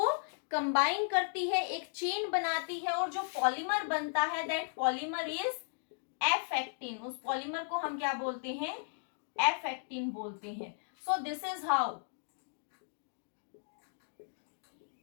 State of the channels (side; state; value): right; silent; digital silence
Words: combine करती है, एक चेन बनाती है, और जो पॉलीमर बनता है that polymer is F actin. उस पॉलीमर को हम क्या बोलते हैं? एफ एक्टिन बोलते हैं. So this is how